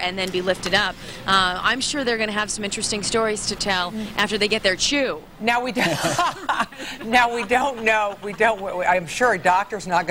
then be lifted up. I'm sure they're going to have some interesting stories to tell after they get their chew. Now we don't know. I'm sure a doctor's not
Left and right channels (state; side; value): identical; both; correlation 1.00